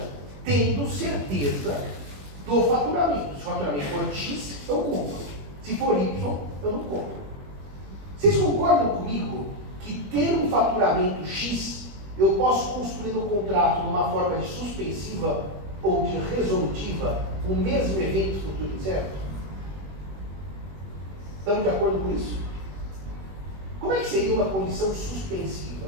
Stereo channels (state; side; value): late; left; 21 ms